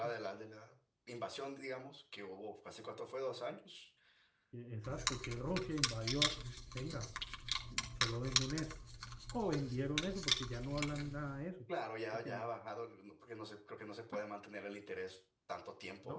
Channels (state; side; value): identical; both; correlation 1.00